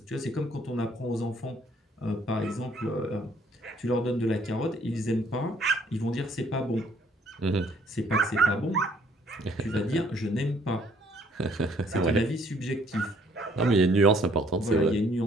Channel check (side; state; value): both; normal; correlation 0.62